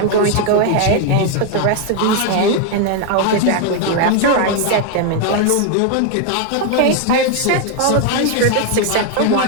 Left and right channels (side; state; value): both; different; correlation 0.01